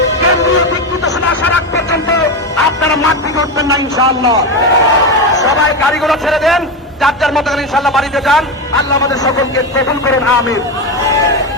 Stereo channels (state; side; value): normal; both; correlation 0.15